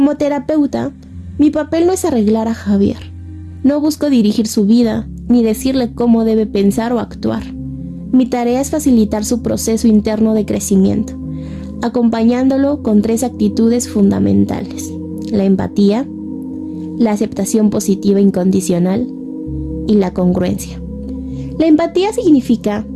terapeuta, mi papel no es arreglar a Javier. No busco dirigir su vida ni decirle cómo debe pensar o actuar. Mi tarea es facilitar su proceso interno de crecimiento, acompañándolo con 3 actitudes fundamentales: la empatía, la aceptación positiva incondicional y la congruencia. La empatía significa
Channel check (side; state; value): both; identical; correlation 1.00